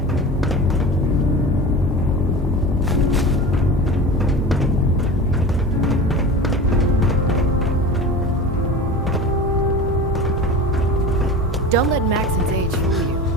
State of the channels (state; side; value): normal; both; correlation 0.33